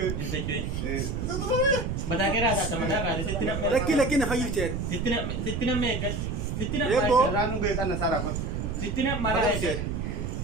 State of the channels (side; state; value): right; noise; rumble, 2 dB below the sound